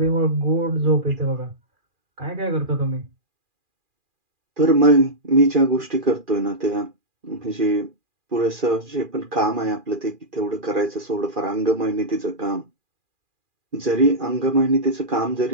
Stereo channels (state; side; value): late; left; 2.4 ms